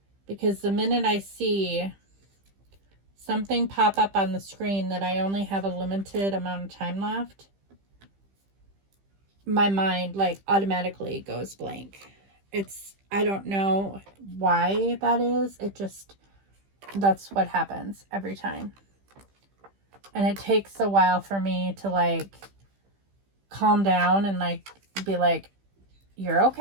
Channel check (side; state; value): left; late; 15 ms